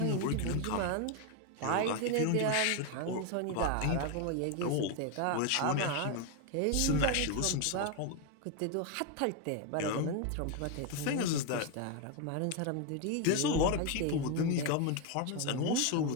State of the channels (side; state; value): both; different; correlation 0.01